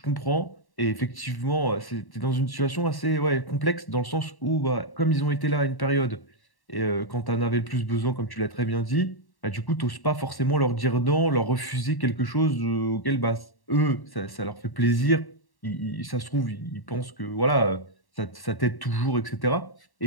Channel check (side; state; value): right; late; 1.1 ms